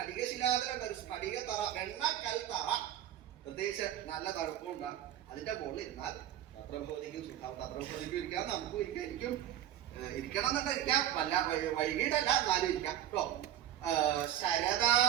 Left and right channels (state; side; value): quieter; left; 11.7 dB